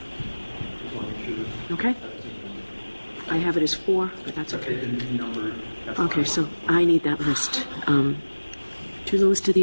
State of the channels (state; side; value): inverted; both; correlation -1.00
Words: Just want to make sure. Okay. I have it as 4, but that's okay. Numbered. Okay, so I need that list. To the list of